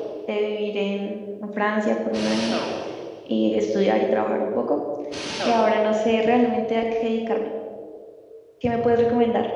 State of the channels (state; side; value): identical; both; correlation 1.00